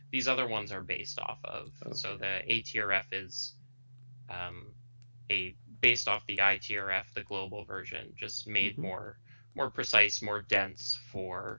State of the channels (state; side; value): inverted; both; correlation -1.00